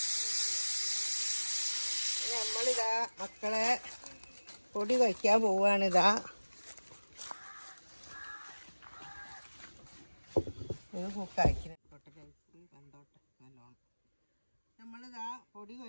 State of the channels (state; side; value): inverted; both; correlation -1.00